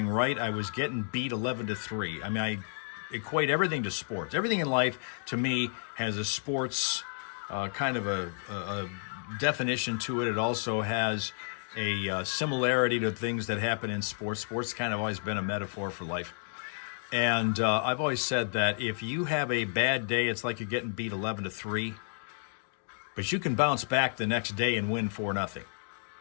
right. I was getting beat 11-3. I mean, I equate everything to sports. Everything in life, to me, has a sports kind of a definition to it. It also has a similarity to things that happen in sports. Sports kind of always been a metaphor for life. And I've always said that if you have a bad day, it's like you're getting beat 11-3. But you can bounce back the next day and win 4-0.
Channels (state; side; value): silent; right; 57 dB below the other